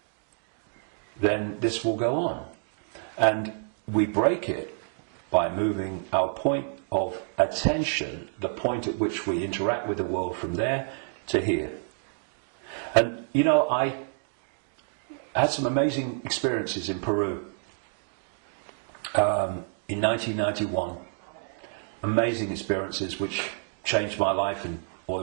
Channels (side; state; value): left; silent; digital silence